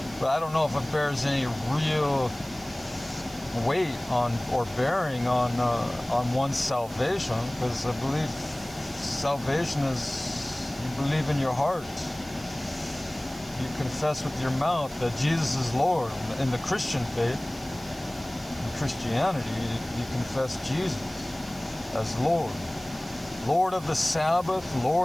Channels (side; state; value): right; noise; hiss, 19 dB below the sound